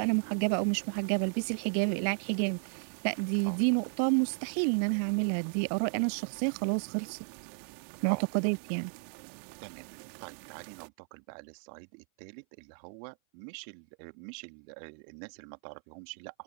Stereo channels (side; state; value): left; silent; 55 dB below the other